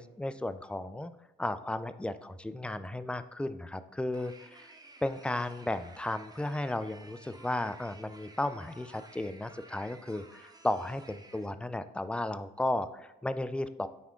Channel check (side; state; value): both; normal; correlation 0.91